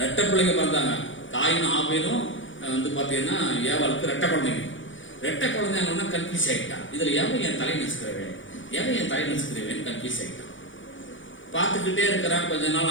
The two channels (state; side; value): late; right; 0.56 ms